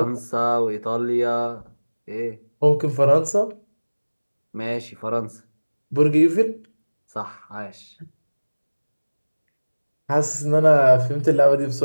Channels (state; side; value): inverted; both; correlation -1.00